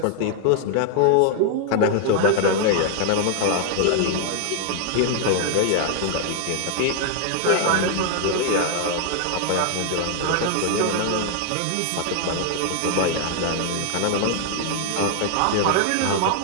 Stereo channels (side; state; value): both; different; correlation 0.00